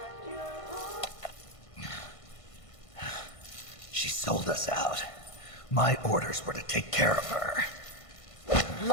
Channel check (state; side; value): late; right; 1.5 ms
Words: She sold us out. My orders were to take care of her.